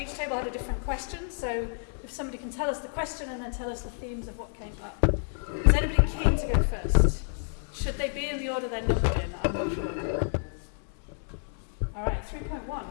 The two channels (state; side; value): silent; right; 58 dB below the other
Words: table had a different question, so if somebody can tell us the question and then tell us the themes of what came up. Is anyone keen to go first? Should they be in the order they're Alright,